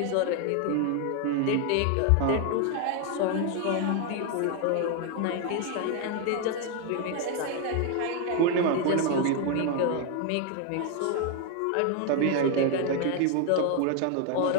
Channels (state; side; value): different; both; correlation 0.01